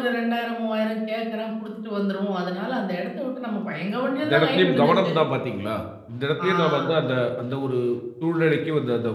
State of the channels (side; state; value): both; identical; correlation 1.00